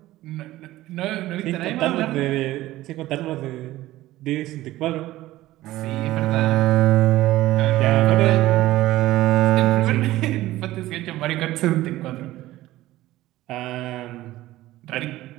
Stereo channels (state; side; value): quieter; left; 16.1 dB